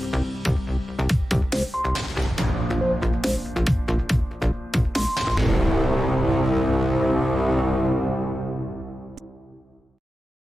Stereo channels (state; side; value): normal; both; correlation 0.93